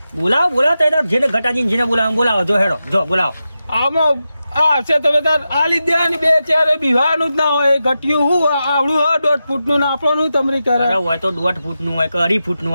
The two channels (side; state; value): both; inverted; correlation -0.91